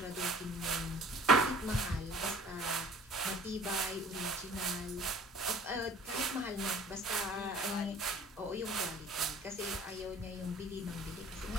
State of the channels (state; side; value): normal; both; correlation 0.50